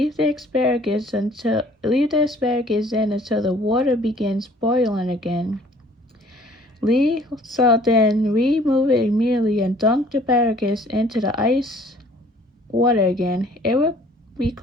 the asparagus in until the water begins boiling again. So then remove it immediately and dunk the asparagus into the ice water again. It will be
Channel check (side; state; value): both; normal; correlation 0.55